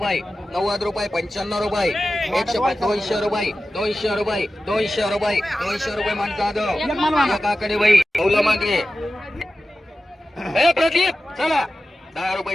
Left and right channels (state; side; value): normal; both; correlation 0.94